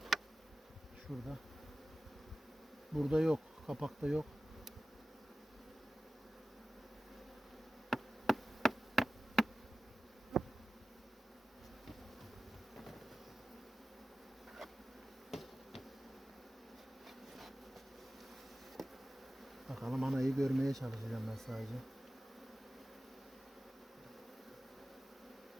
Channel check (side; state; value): both; normal; correlation 0.95